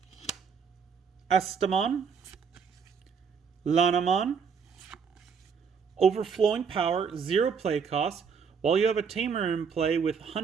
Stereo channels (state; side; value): quieter; left; 6.2 dB